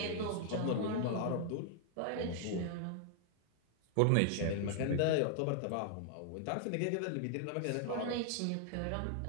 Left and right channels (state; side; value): different; both; correlation 0.00